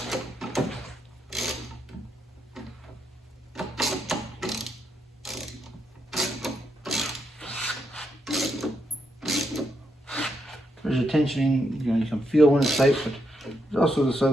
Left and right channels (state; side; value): normal; both; correlation 0.80